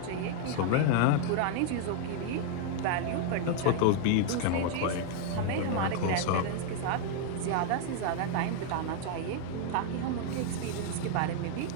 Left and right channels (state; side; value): different; both; correlation 0.00